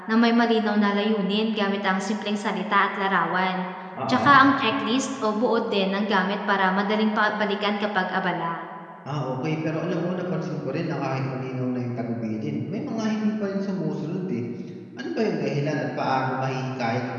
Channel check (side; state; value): both; identical; correlation 1.00